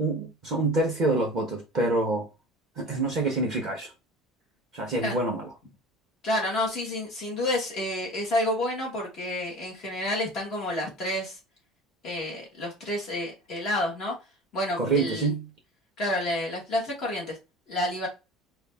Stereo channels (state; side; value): normal; both; correlation 0.37